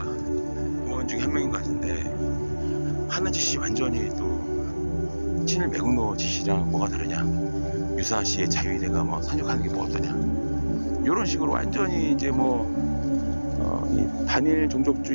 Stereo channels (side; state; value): both; inverted; correlation -1.00